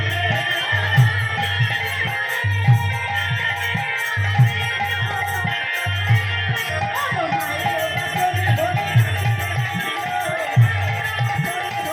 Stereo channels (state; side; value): identical; both; correlation 1.00